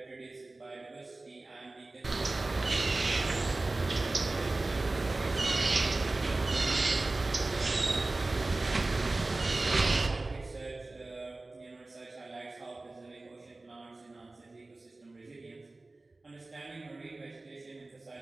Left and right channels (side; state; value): left; quieter; 3.1 dB